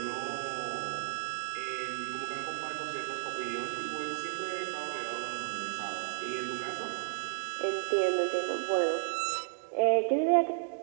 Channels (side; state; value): left; silent; digital silence